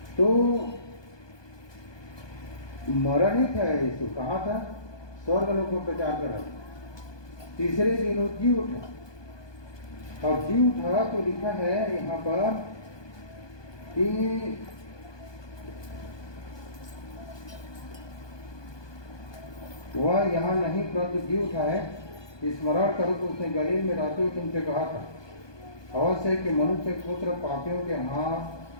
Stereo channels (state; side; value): late; right; 1.2 ms